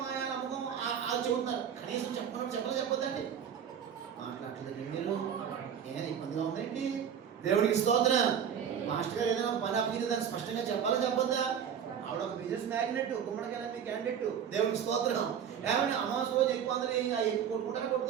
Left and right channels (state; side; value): quieter; left; 8.2 dB